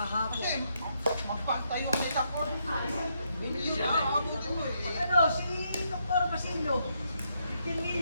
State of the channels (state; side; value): inverted; both; correlation -0.77